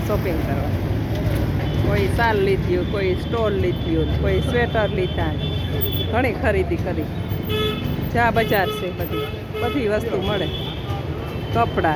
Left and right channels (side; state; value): both; identical; correlation 1.00